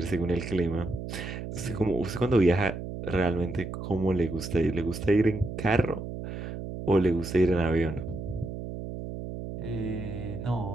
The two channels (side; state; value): right; noise; hum, 7 dB below the sound